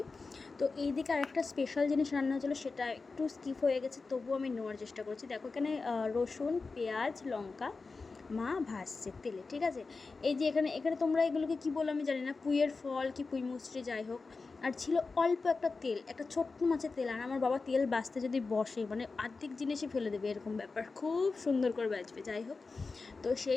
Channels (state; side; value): quieter; right; 4.1 dB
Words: তো এইদিকে আরেকটা স্পেশাল জিনিস রান্না হচ্ছিলো, সেটা একটু স্কিপ হয়ে গেছে, তবুও আমি নেওয়ার চেষ্টা করছি। দেখো এখানে রসুন, পেঁয়াজ, লঙ্কা মা ভাজছে তেলে, ঠিক আছে। এই যে এখানে এখানে তোমরা এগুলোকে কী বলো আমি জানি না, পুঁইয়ের ফল কি পুঁই মুচড়ে, যাই হোক। আর ছিল অল্প একটা তেল, একটা ছোট্ট মাছের তেল। আর আমার বাবা তেল বাছতে যদি বসে মানে অর্ধেক জিনিসই ফেলে দেবে, এরকম ব্যাপার, খুব সুন্দর করে বাজবে, যাই হোক। তো